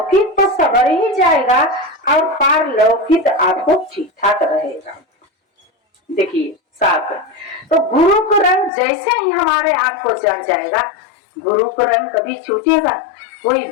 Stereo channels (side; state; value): right; drops out; at 8.7 s